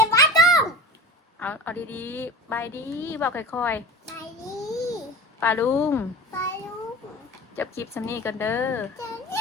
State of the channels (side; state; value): both; normal; correlation 0.33